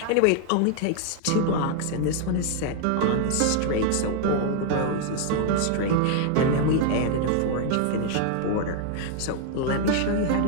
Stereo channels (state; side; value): different; both; correlation 0.00